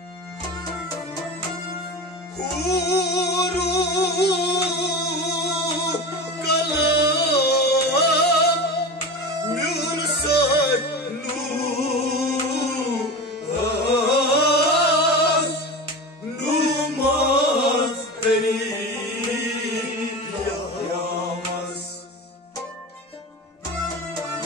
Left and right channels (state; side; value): normal; both; correlation 0.28